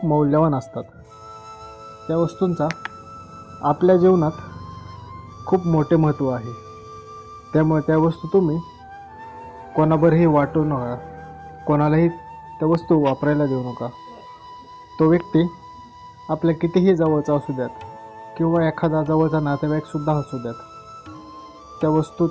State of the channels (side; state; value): both; identical; correlation 1.00